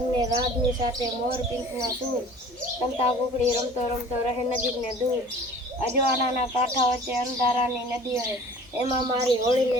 રાતની સાથે મોર પીંછના સૂર, કંતા કુકડી રમતો રમતો રહે નજીક ને દૂર. અજવાળાના કાંઠા વચ્ચે અંધારાની નદી હે, એમાં મારી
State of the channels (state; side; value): normal; both; correlation 0.46